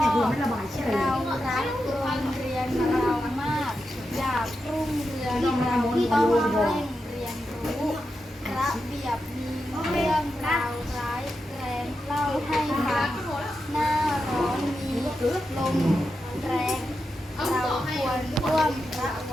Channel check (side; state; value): both; normal; correlation 0.88